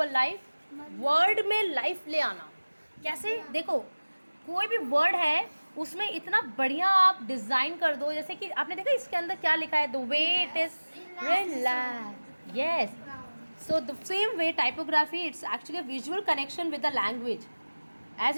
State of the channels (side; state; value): both; inverted; correlation -1.00